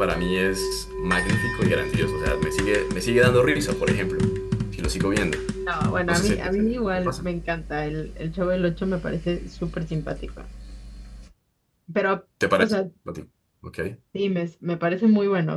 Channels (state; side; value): identical; both; correlation 1.00